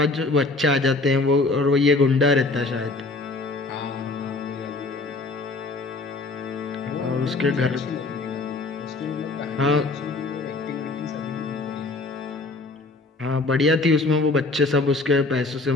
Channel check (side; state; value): right; quieter; 3.4 dB